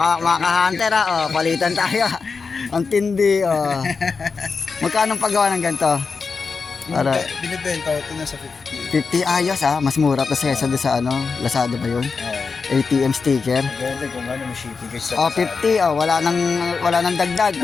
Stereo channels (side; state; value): right; quieter; 4.9 dB